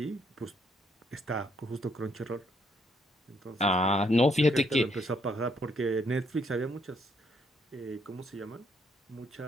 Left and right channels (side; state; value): both; normal; correlation 0.71